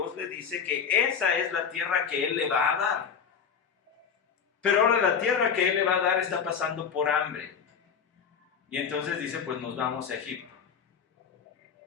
le dice que esa es la tierra que Él le va a dar. Pero ahora la tierra que Él le va a dar está pasando por hambre. Y entonces dice, pues nos vamos a Egipto.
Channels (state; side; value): quieter; right; 6.9 dB